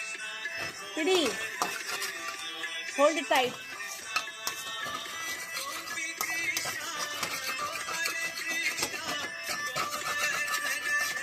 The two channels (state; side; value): identical; both; correlation 1.00